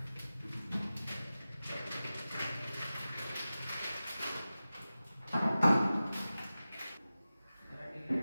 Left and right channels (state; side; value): inverted; both; correlation -0.95